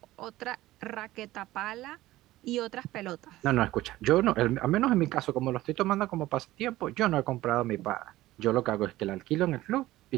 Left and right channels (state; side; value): quieter; left; 16.5 dB